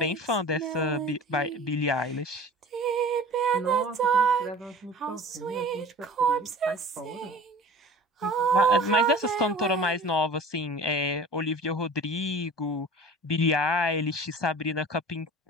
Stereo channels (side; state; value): both; normal; correlation 0.41